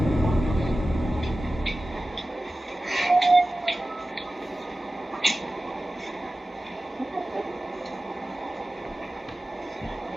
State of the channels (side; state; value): both; normal; correlation 0.95